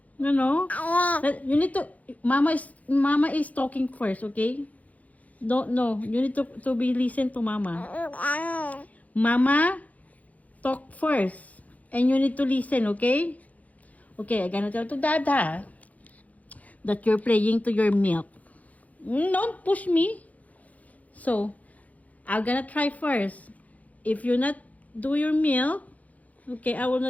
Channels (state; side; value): late; right; 0.073 ms